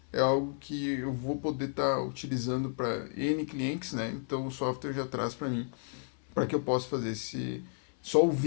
é algo que eu vou poder estar utilizando para N clientes, né? Então, o software já traz para mim, para que eu possa fazer só o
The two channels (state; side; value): silent; right; 56 dB below the other